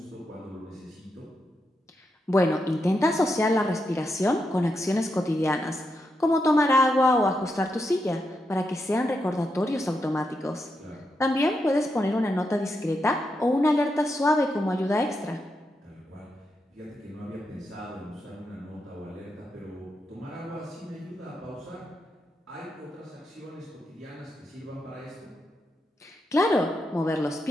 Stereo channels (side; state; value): both; normal; correlation 0.84